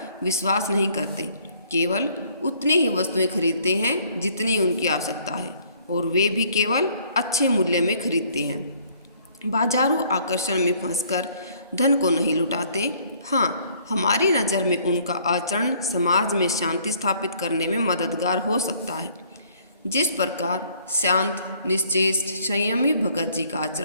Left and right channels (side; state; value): both; inverted; correlation -0.61